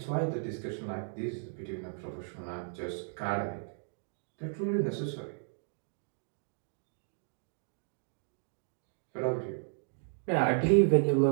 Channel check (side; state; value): left; silent; digital silence